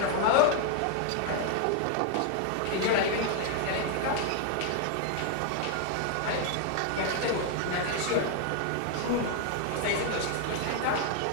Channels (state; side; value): different; both; correlation 0.00